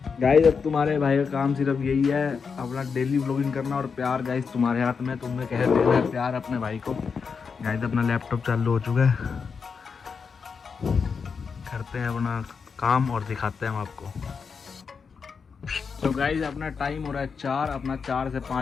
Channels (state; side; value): quieter; right; 5.7 dB